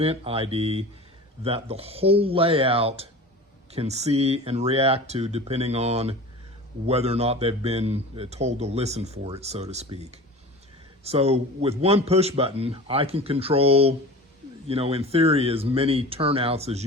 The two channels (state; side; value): normal; both; correlation 0.36